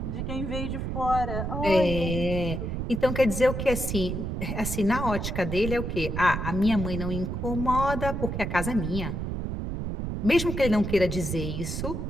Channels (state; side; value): noise; right; rumble, 3 dB below the sound